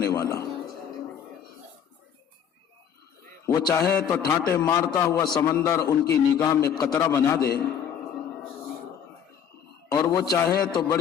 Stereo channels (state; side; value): quieter; right; 8.3 dB